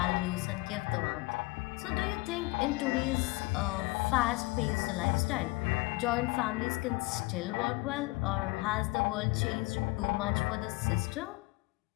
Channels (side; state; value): right; quieter; 23.2 dB